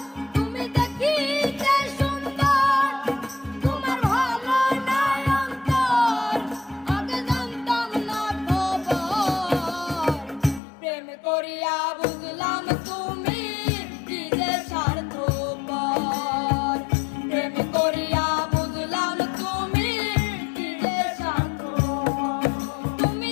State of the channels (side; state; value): right; drops out; at 10.6 s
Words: তুমি দেখিতে সুন্দর তোমার ভালো নয়ন তোর, আগে জানতাম না খবর। প্রেম করিয়া বুঝলাম